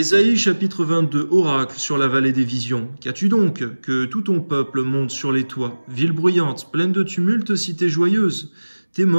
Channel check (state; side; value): inverted; both; correlation -1.00